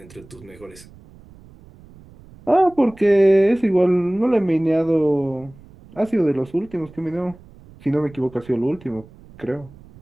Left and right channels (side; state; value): right; noise; rumble, 23 dB below the sound